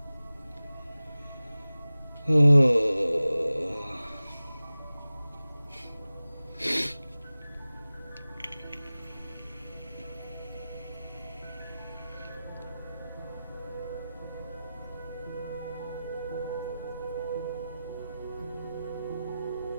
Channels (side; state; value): both; inverted; correlation -0.96